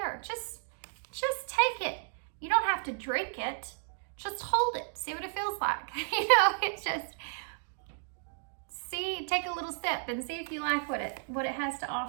Just take it. You don't have to drink it. Just hold it. See what it feels like. You know, it's just, take a little sip and see if you like what it has to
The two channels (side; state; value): left; silent; digital silence